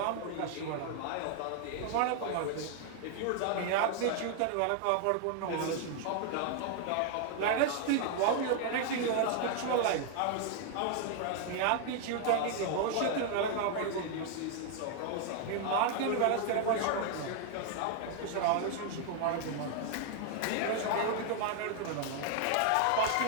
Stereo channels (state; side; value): different; both; correlation 0.00